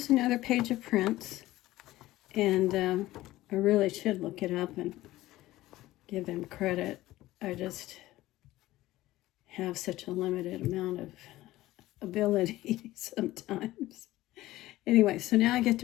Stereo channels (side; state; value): right; quieter; 16.5 dB